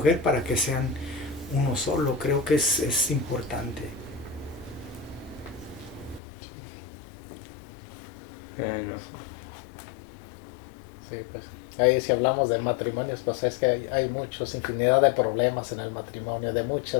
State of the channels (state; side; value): drops out; right; at 6.2 s